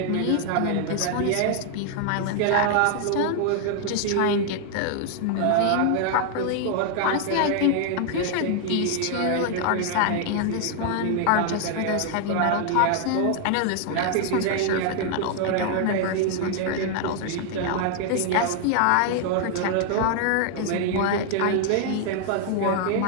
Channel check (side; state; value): both; different; correlation 0.00